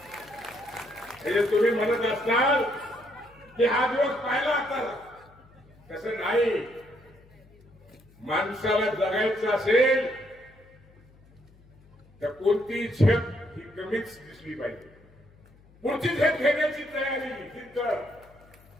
तुम्ही म्हणत असताल की हा दिवस पाहिला आता, तसं नाही. माणसाला जगायचं असेल तर कोणती झेप ही कमीच दिसली पाहिजे. पुढची झेप घेण्याची तयारी तिथं.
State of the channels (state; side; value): noise; left; hum, 27 dB below the sound